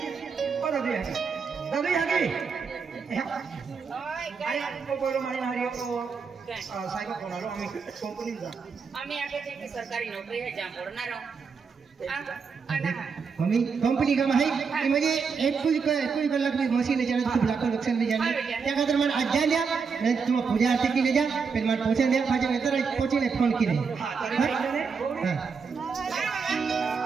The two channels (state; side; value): quieter; left; 5.5 dB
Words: ओ दादी हागी आई को बोलो मारी मारी को साहेब फोन आलो आम्ही कंपनी जा आम्ही आगे थे कि सरकारी नौकरी है जहाँ पढ़ना रहो मम्मी कंपनी का है कि मुझे एक कुछ कलाक भी मशीन ले जाना खूब लाखों नुकसान में जाना त्या खातिर मैं आज जा लिया मैं तुम पूजा आरती की ले जा फिर मैं पहुंचा दिया फाजे में तरह पहुंची ने फोन की नहीं हां